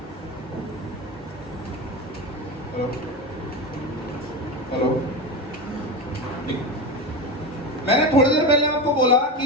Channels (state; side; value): normal; both; correlation 0.21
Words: हेलो मैंने थोड़ी देर पहले आपको बोला